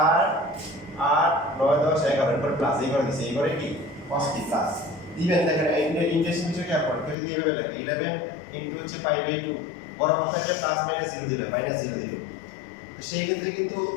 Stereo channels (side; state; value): right; drops out; at 7.2 s